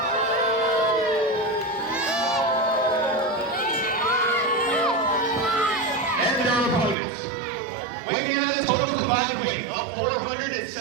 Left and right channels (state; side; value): drops out; left; at 7.0 s